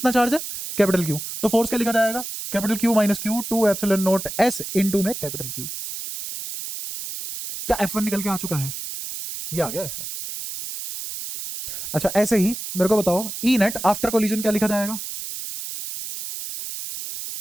चार्ज है, कैपिटल Q। तो फोर्स क्या लिखा जाएगा, capital Q minus Q 2 epsilon naught S into में कैपिटल Q। क्या F1 निकल के आ चुका है? ये आ गया F1। अच्छा ऐसे ही मेरे को बताओ ई नेट आफ्टर कोलिजन क्या लिखा जाएगा?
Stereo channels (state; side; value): noise; right; hiss, 8 dB below the sound